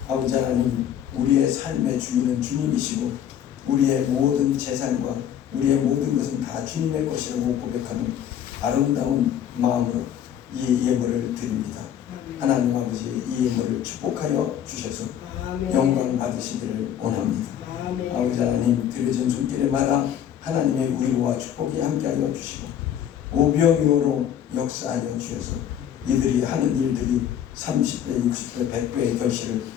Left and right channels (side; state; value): right; quieter; 9.9 dB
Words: 아버지 하나님, 우리의 삶의 주인은 주님이시고 우리의 모든 재산과 우리의 모든 것은 다 주님의 것이라고 고백하는 아름다운 마음으로 이 예물을 드립니다. 하나님 아버지, 이 예물을 축복하여 주셔서 영광 받으시기를 원합니다. 아버지 하나님, 드려진 손길에마다 하나님의 위로와 축복이 함께하여 주시고 오병이어로 역사하여 주셔서 이들이 하는 일들이 30배, 60배, 100배의 결실을